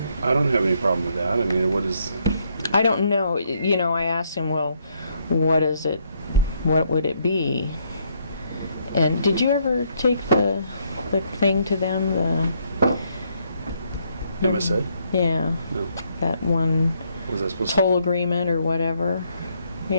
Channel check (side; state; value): both; inverted; correlation -0.72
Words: don't have any problem with that. I mean, what is, I don't know, I asked him, well, what is it, what would it be? And did you ever take the thing to them, MSA? Yeah, No. that one, Was I supposed to? toll agreement or whatever.